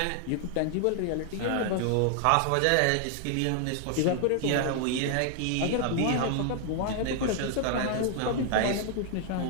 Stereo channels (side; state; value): both; different; correlation 0.00